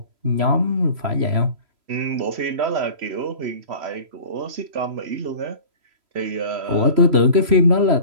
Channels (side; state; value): left; late; 3.0 ms